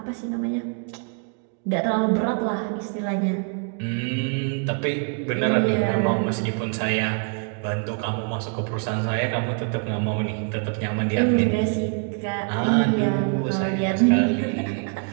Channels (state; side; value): quieter; left; 40.0 dB